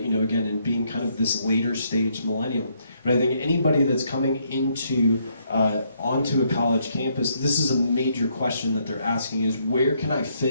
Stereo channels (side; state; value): both; inverted; correlation -0.73